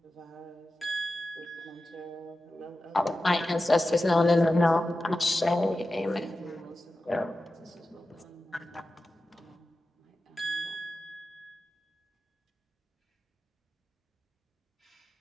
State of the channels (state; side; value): normal; both; correlation 0.93